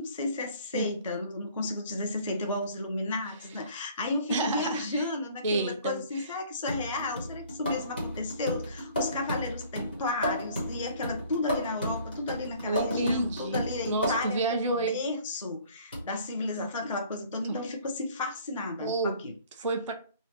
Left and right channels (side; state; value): both; inverted; correlation -0.53